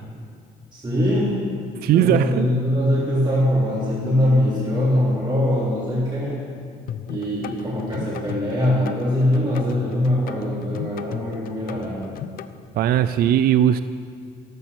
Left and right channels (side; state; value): both; normal; correlation 0.62